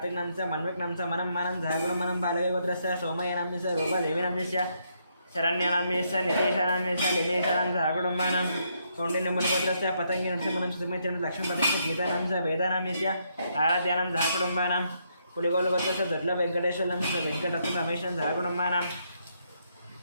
नाम्नी मन्विक नाम्नी मनम्मानं सहकुटुम्बानां बालके गोत्रस्य सोमय्य नाम्नी रूपा देवी नाम्नी शरण्य नाम्नी नितीश नाम्नी लिलेशानां सहकुटुम्बानां कौंडिन्य गोत्रस्य पतंगी नरसिंहनं सुमित्रं लक्ष्मीपतिस्य गीता नाम्नी वेदा नाम्नी आराध्यानां सहकुटुम्बानां पुलिगोल गोत्रस्य दुर्लभ वेंकटेश्वरं वेंकटरत्न रमेशं सहकुटुम्बानां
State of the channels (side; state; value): both; inverted; correlation -0.75